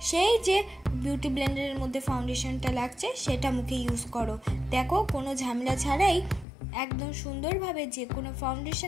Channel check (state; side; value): drops out; right; at 6.5 s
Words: সেই যে বিউটি ব্লেন্ডারের মধ্যে ফাউন্ডেশনটা লাগছে সেটা মুখে ইউজ করো। দেখো কোনো ঝামেলা ছাড়াই একদম সুন্দরভাবে যে কোনো